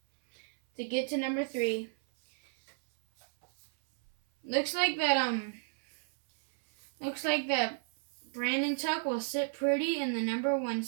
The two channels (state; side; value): silent; left; 56 dB below the other